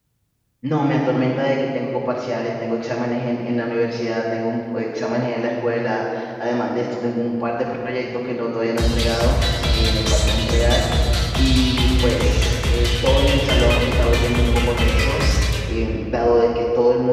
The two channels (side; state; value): both; identical; correlation 1.00